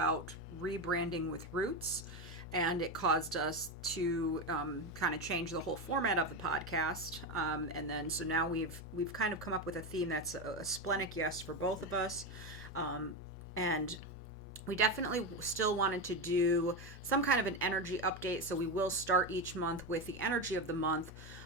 rebranding with roots, and it caused us to kind of change the whole format of the podcast. So now we've kind of come up with a theme that's a splenic yes for both of us. And we definitely still wanted to do some kind of an energy update, so we will start each month with the energy of the month,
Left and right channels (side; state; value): both; normal; correlation 0.15